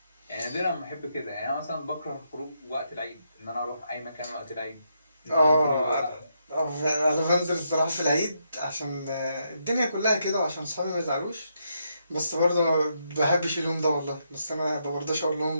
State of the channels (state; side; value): inverted; both; correlation -0.79